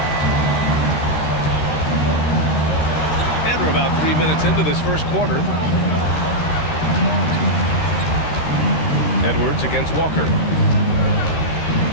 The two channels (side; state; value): right; late; 13 ms